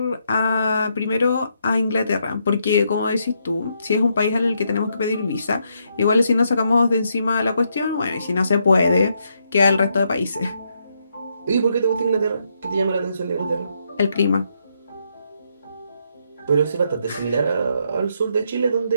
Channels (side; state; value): both; inverted; correlation -0.77